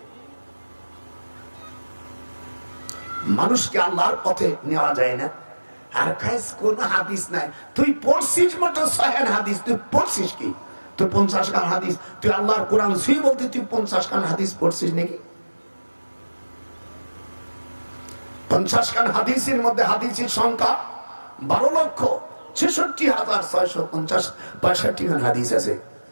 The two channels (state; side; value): inverted; both; correlation -1.00